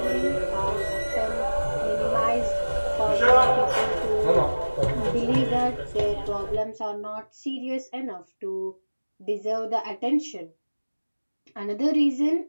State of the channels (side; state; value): both; inverted; correlation -1.00